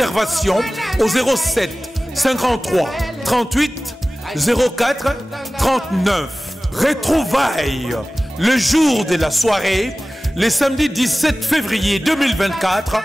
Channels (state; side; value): normal; both; correlation 0.97